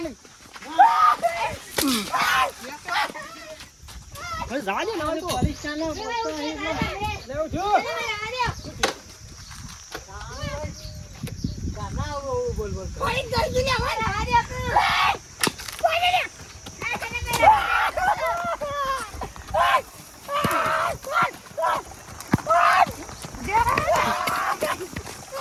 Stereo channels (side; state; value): both; identical; correlation 1.00